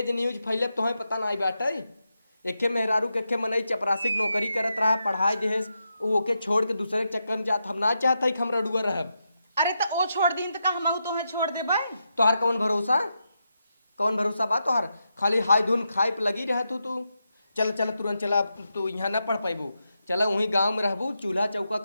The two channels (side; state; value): both; inverted; correlation -0.86